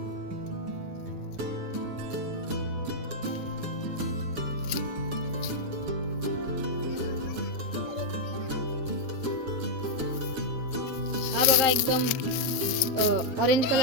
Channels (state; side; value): late; left; 7.3 ms